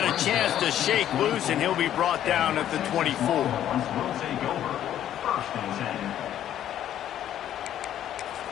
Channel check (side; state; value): right; quieter; 11.2 dB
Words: a chance to shake loose, and he'll be brought down at the 24.